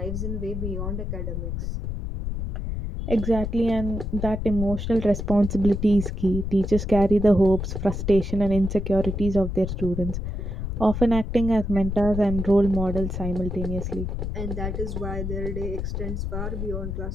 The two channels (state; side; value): noise; left; rumble, 4 dB below the sound